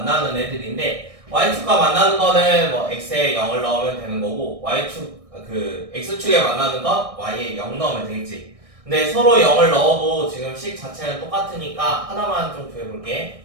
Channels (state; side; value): late; left; 1.6 ms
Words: 애들인데 y축과 만나는 거는 뭐 x에 0을 넣으면 되는 거고 y축 그 x축에 만나는 건 y에 0 넣으면 되겠지. 근데 서로 0을 넣어도 지금 식 자체는 똑같으니까 하나만 좀